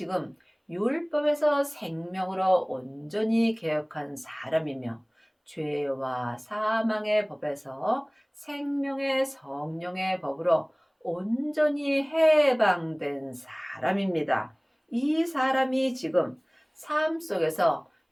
율법에서 생명으로 온전히 개혁한 사람이며 죄와 사망의 법에서 생명의 성령의 법으로 온전히 해방된 사람입니다. 이 사람이 지금 삶 속에서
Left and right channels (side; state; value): both; identical; correlation 1.00